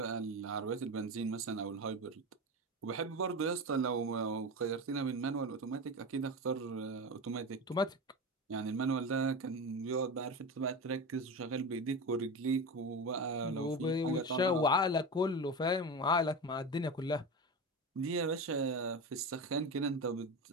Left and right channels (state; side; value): normal; both; correlation 0.23